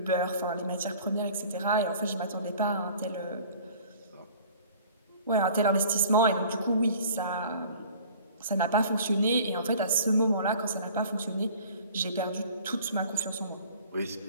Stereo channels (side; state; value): both; inverted; correlation -0.48